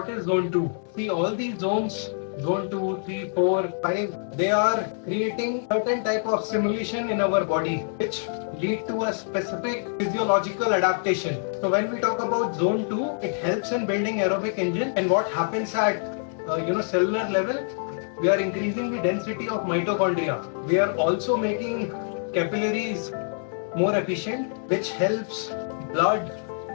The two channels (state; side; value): silent; right; digital silence